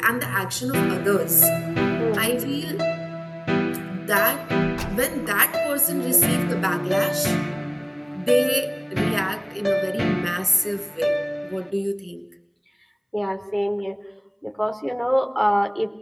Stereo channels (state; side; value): identical; both; correlation 1.00